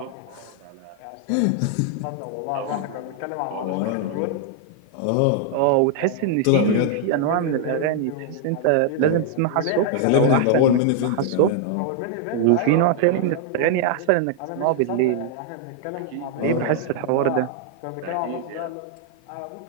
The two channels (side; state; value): both; different; correlation 0.00